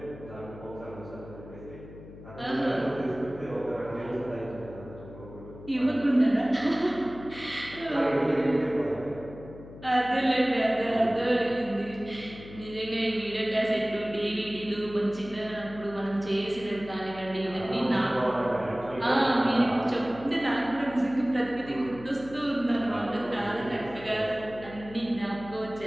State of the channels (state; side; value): noise; left; hum, 16 dB below the sound